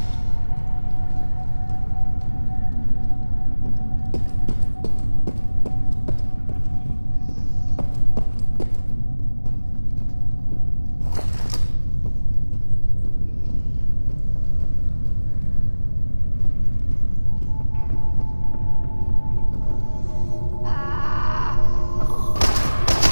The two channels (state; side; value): inverted; both; correlation -1.00